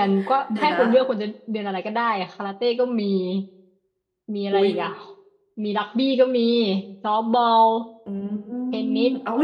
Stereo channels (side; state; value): both; identical; correlation 1.00